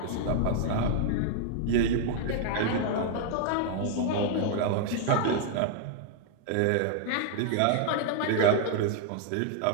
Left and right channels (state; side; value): different; both; correlation 0.00